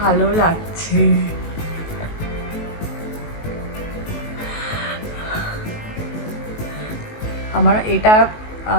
লাগছে। আমার এটা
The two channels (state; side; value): late; right; 19 ms